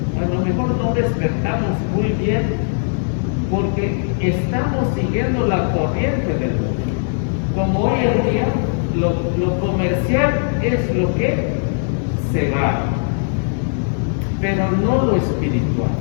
a lo mejor no despertamos muy bien porque estamos siguiendo la corriente del mundo. Como hoy en día lo comercial es lo que se va, pero no lo espiritual.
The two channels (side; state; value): right; silent; digital silence